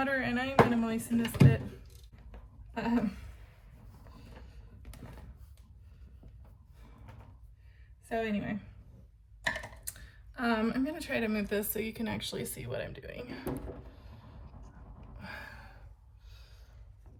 and I'm gonna moisten this bit. So anyway, I'm gonna try to move this so you can actually see what I'm doing.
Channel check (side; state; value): both; identical; correlation 1.00